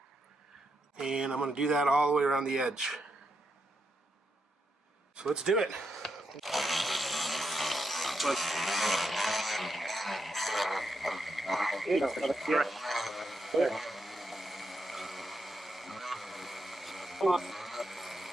And I'm going to do that all the way around the edge. So let's do it.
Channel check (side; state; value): both; normal; correlation 0.83